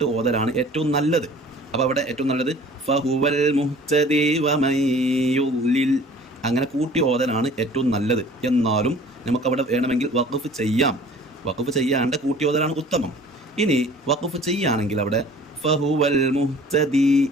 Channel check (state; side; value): normal; both; correlation 0.48